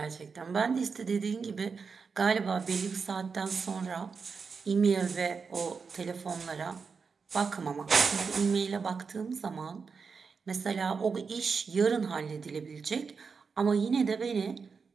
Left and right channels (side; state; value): left; quieter; 5.3 dB